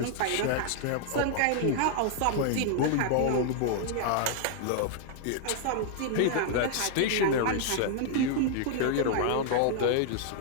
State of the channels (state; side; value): different; both; correlation -0.01